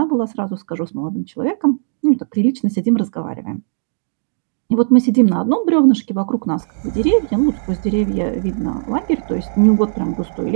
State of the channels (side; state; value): left; silent; digital silence